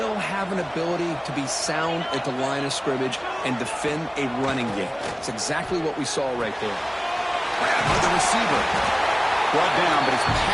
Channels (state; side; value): identical; both; correlation 1.00